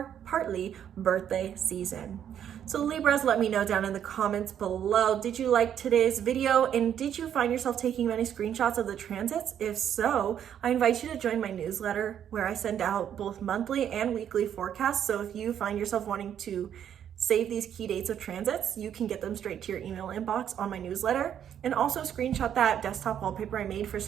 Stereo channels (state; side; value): quieter; left; 9.5 dB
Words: partly birthday season. So Libras, let me know down in the comments below, did you like today's video and did you find yourself taking many screenshots of the transits? If so, I invite you to join my newsletter where I send out both monthly and weekly forecasts. So if you find yourself wanting to save these key dates of transits, you can get them straight to your email inbox on my newsletter, and also screenshot that desktop wallpaper I made for